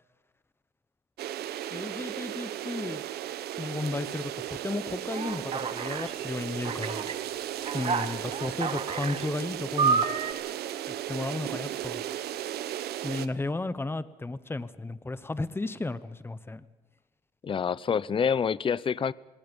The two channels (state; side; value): normal; both; correlation 0.40